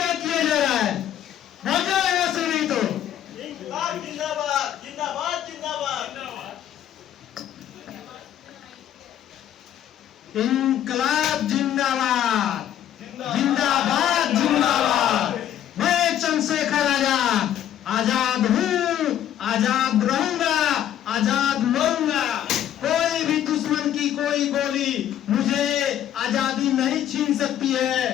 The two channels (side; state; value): right; quieter; 10.9 dB